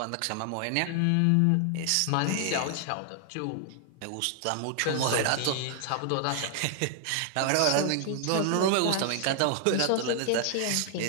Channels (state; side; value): different; both; correlation 0.00